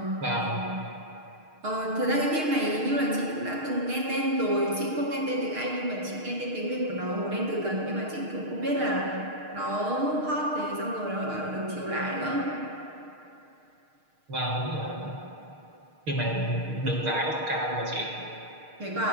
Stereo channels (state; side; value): late; left; 6.5 ms